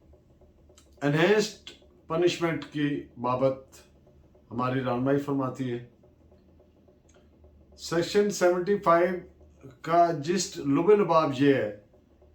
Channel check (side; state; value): both; identical; correlation 1.00